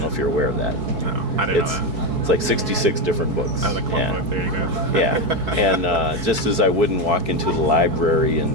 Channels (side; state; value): left; late; 4.6 ms